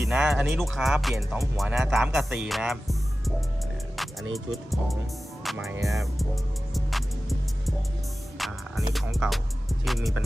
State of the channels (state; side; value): normal; both; correlation 0.95